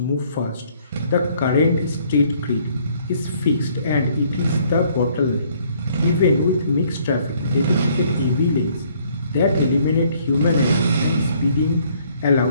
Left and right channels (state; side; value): inverted; both; correlation -0.64